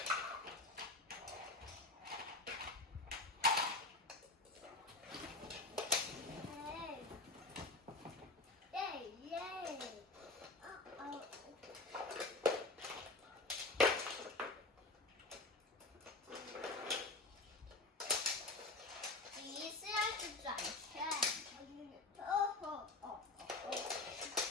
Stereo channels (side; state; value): right; quieter; 3.1 dB